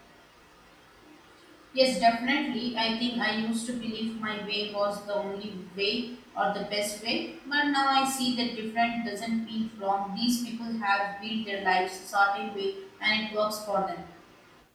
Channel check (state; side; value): identical; both; correlation 1.00